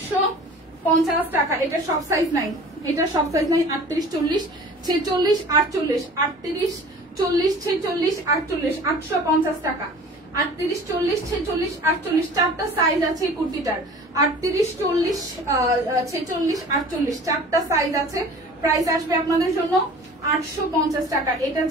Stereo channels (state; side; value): normal; both; correlation 0.44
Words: টাকা। এটা সব সাইজ নাই, 38, 40, 46, 48, 38, 40, 46, 48, 850 টাকা। 38, 40, 46, 48 চারটা সাইজ আছে এই কুর্তিটার। 38, 40, 46, 48 চারটা সাইজ আছে। প্রাইস আসবে আপনাদের জন্য 850 টাকা। এটা